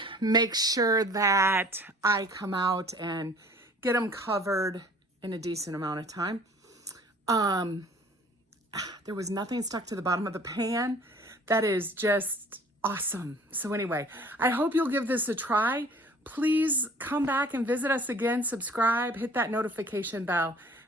Make sure that I come out and get them covered in a decent amount of time. There was nothing stuck to the bottom of the pan. That is just awesome. So anyway, I hope you'll give this a try. Please come back and visit us again, subscribe, hit that notification bell.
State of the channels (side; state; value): both; normal; correlation 0.50